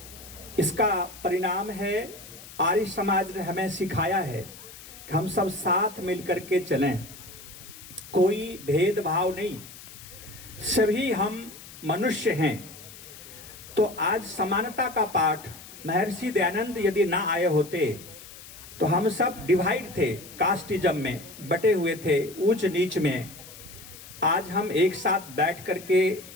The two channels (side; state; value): left; noise; hiss, 17 dB below the sound